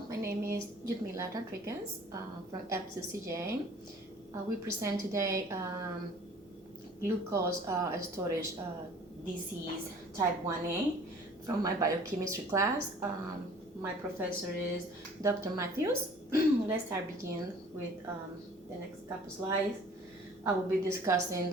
my name is Yudmila Rodriguez from FCCJ. We present today glucose storage disease type 1A from my biochemistry class. My professor is Dr. Matthews. Let's begin with the next couple slides. I will be discussing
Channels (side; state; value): both; normal; correlation 0.50